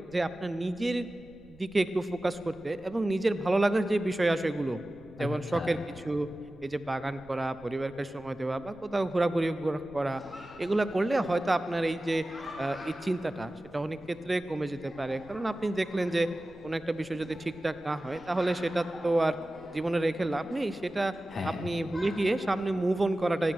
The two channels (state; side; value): noise; right; rumble, 25 dB below the sound